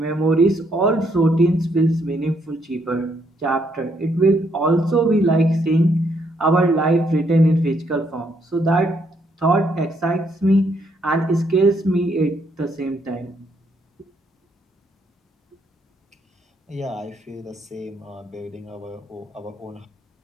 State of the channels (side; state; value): both; normal; correlation 0.73